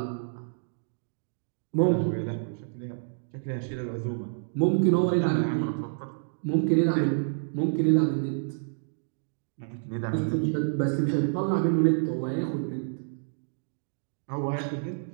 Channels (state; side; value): silent; left; digital silence